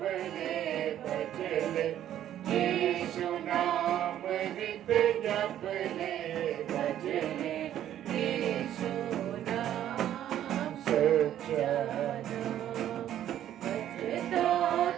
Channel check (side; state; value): left; quieter; 11.4 dB